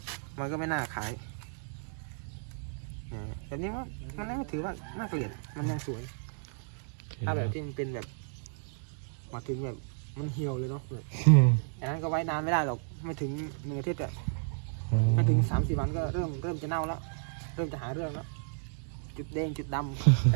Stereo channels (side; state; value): left; silent; digital silence